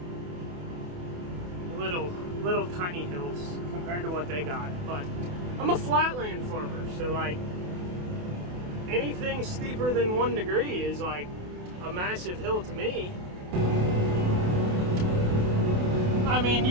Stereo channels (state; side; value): late; left; 28 ms